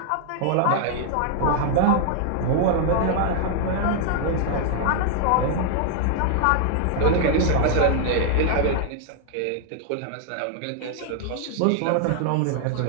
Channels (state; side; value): different; both; correlation 0.00